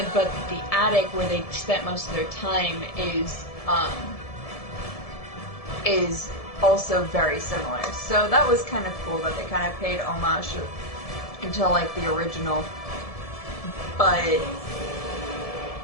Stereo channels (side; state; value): right; late; 1.7 ms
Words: But the attic, where they spent most of their time, is also very similar. So that was kind of cool that they kind of paid homage to the original. But